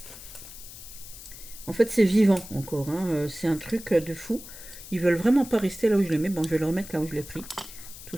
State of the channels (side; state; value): left; noise; hiss, 15 dB below the sound